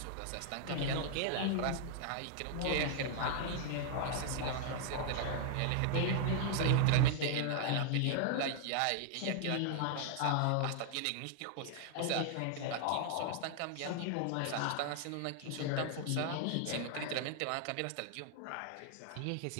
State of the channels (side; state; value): both; different; correlation 0.00